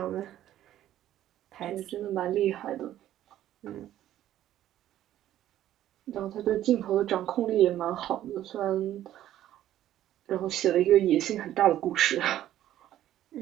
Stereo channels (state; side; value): quieter; left; 12.6 dB